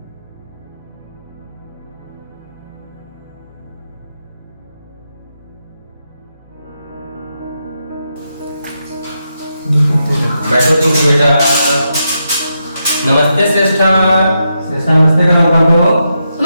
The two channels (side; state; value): both; inverted; correlation -0.84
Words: बैठो तुम बेटा। नमस्ते श्रेष्ठा। श्रेष्ठा नमस्ते करना बाबू।